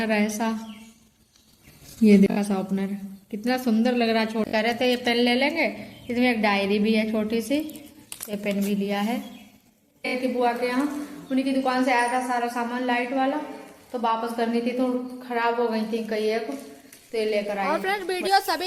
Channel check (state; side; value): identical; both; correlation 1.00